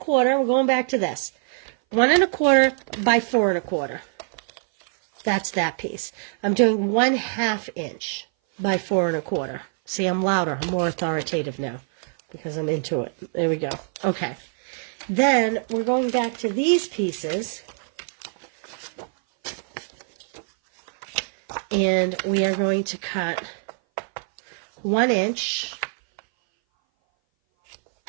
We're going back to this. 1¼ by 4¼ That's that piece. I'm doing 1/2 inch by 4¼ See, I'm louder. I'm more authoritative now because I'm into it. There we go. Okay. Then we're going back to these pieces. And we are going to cut 1 inch.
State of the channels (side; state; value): left; silent; 58 dB below the other